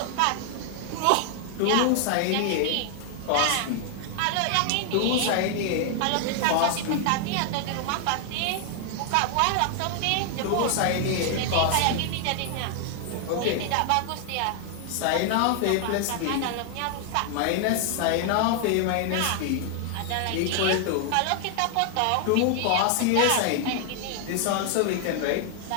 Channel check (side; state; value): both; different; correlation 0.00